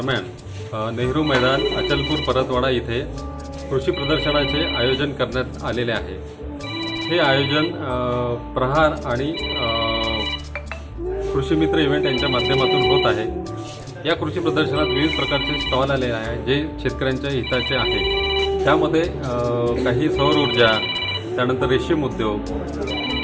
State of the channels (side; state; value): both; identical; correlation 1.00